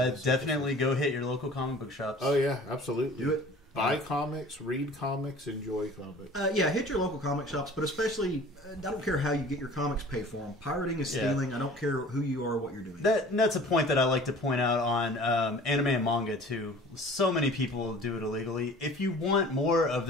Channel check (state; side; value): normal; both; correlation 0.46